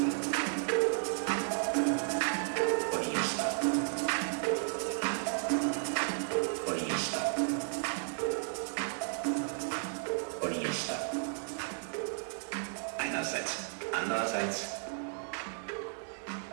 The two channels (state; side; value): silent; left; 55 dB below the other